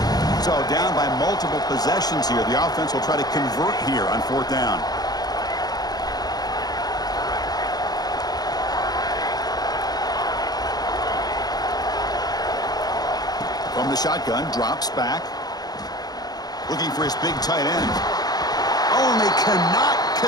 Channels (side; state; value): right; late; 0.19 ms